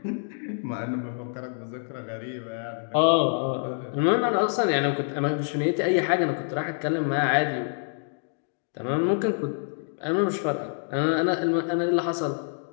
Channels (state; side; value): silent; right; digital silence